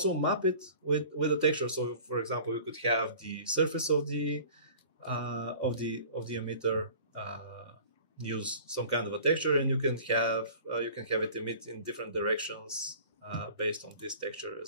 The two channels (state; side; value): inverted; both; correlation -0.45